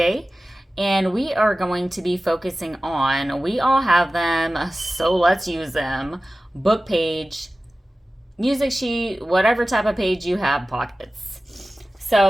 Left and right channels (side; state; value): both; normal; correlation 0.96